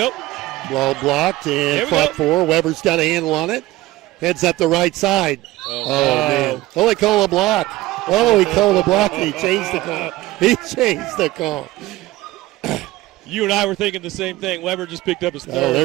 Ball blocked and fought for. Weber's got a handle on it. Heads up the right side. Oh, man. Oh, they call a block. Oh, he called a block and he changed the call. He changed the call. You and I were thinking the same thing. Weber just picked up his third. Oh,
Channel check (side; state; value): left; quieter; 17.5 dB